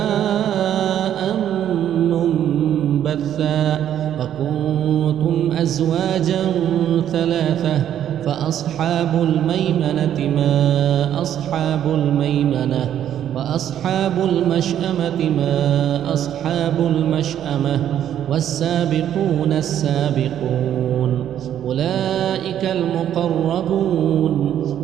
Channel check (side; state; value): left; quieter; 10.5 dB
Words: منبثا وكنتم أزواجا ثلاثة فأصحاب الميمنة ما أصحاب الميمنة وأصحاب المشأمة ما أصحاب المشأمة والسابقون السابقون أولئك المقربون